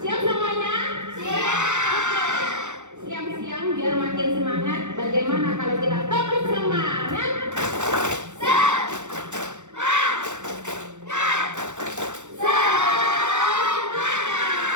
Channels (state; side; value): late; left; 0.84 ms